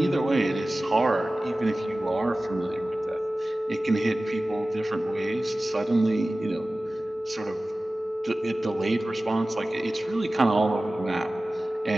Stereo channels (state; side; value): normal; both; correlation 0.97